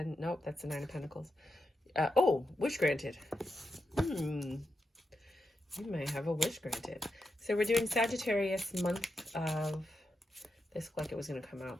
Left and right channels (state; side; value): normal; both; correlation 0.87